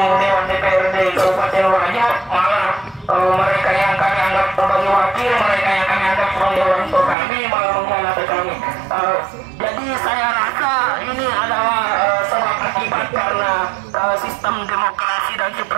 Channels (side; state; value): left; drops out; at 7.2 s